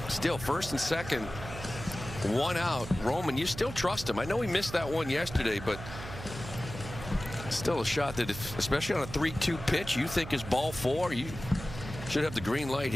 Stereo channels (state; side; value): noise; right; hum, 11 dB below the sound